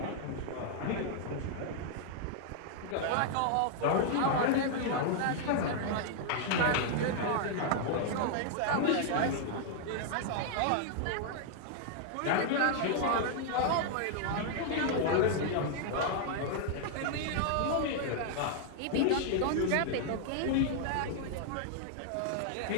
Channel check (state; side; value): different; both; correlation 0.00